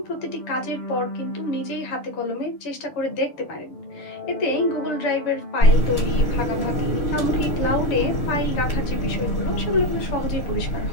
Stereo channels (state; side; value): late; right; 6.6 ms